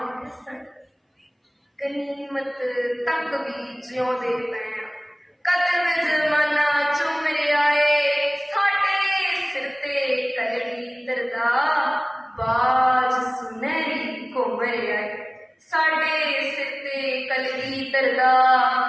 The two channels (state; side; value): identical; both; correlation 1.00